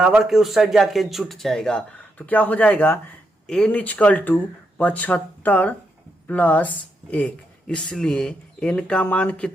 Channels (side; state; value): both; normal; correlation 0.81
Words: के उस साइड जाके जुट जाएगा। तो क्या हो जाएगा n इक्वल टू 75 प्लस 1। इसलिए n का मान